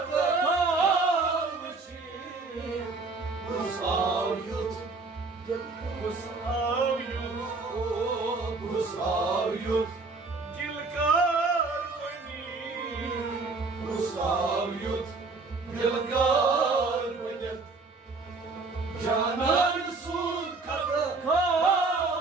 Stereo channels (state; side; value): quieter; left; 3.9 dB